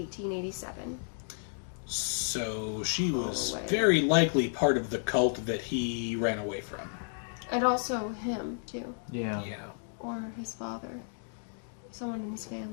So she was Holloway. very likely part of the cult that he ran away from. And also him, too. Yeah. Yeah. Or his father. Someone in his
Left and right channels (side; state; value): right; silent; digital silence